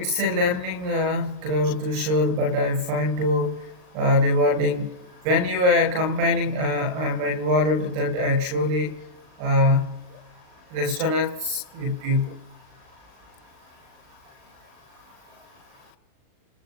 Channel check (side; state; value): left; late; 39 ms